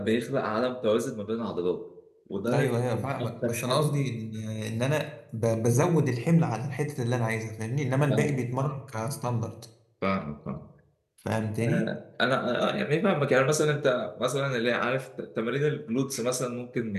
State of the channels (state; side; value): identical; both; correlation 1.00